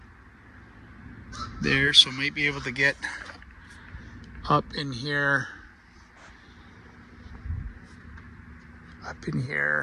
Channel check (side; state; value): both; identical; correlation 1.00